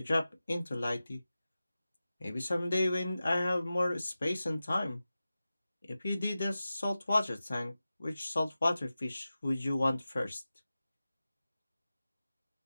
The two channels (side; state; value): both; inverted; correlation -0.95